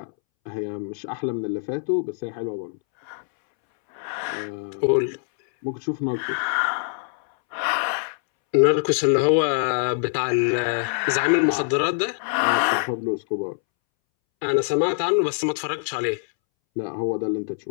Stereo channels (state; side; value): silent; right; 63 dB below the other